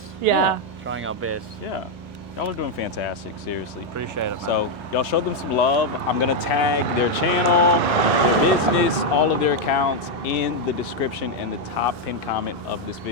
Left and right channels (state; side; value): normal; both; correlation 0.01